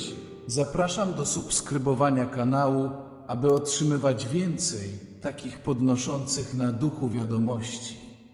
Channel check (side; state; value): both; identical; correlation 1.00